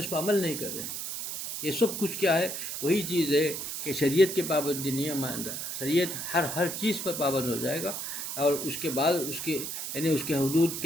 پر عمل نہیں کر رہے۔ یہ سب کچھ کیا ہے؟ وہی چیز ہے کہ شریعت کے پابندی نہیں ہے ماندہ، شریعت ہر چیز پر پابند ہو جائے گا، اور اس کے بعد اس کے حدود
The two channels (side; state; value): right; noise; hiss, 5 dB below the sound